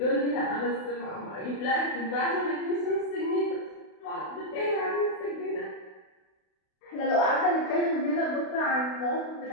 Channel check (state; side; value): late; right; 32 ms